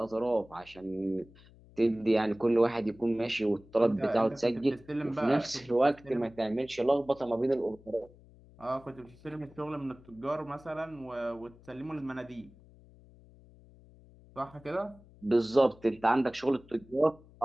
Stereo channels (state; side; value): noise; left; hum, 24 dB below the sound